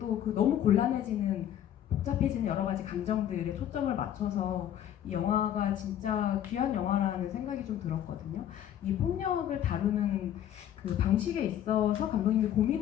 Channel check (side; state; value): right; quieter; 10.8 dB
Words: 너무 곤란해지는 복잡해지는 여러 가지 감정들에 초점을 맞춰서 이 영화가 진짜 귀한 영화라는 생각이 좀 들었거든요. 이 폭력을 다루는 그 방식에 있어서 감독님이